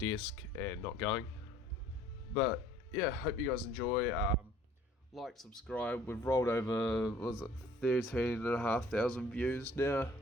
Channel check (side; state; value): both; normal; correlation 0.55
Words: and not going. But yeah, hope you guys enjoy. Like, subscribe. We've rolled over, 13,500 views now,